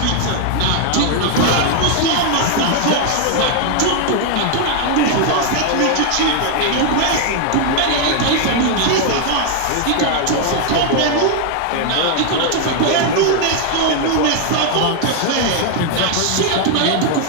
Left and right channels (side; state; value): both; different; correlation 0.00